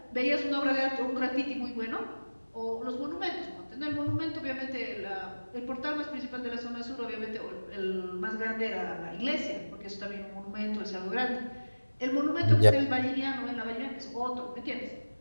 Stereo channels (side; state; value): both; inverted; correlation -1.00